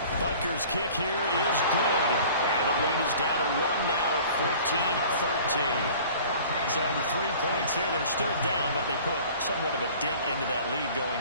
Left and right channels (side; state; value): both; inverted; correlation -0.46